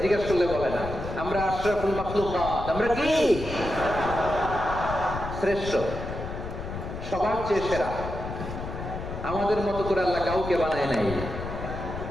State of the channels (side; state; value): left; noise; rumble, 7 dB below the sound